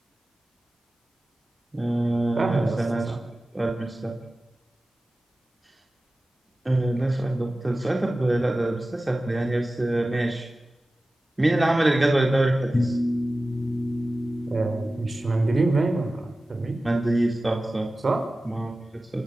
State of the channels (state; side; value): normal; both; correlation 0.96